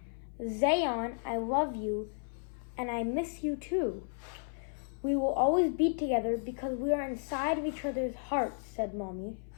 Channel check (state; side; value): silent; right; 55 dB below the other